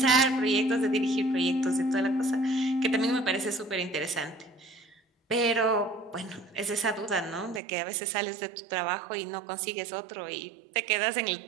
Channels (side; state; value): left; drops out; at 7.6 s